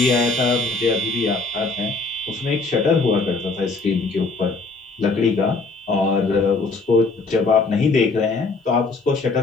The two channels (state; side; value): quieter; right; 3.8 dB